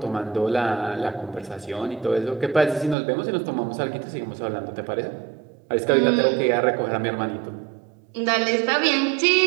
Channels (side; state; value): left; drops out; at 3.0 s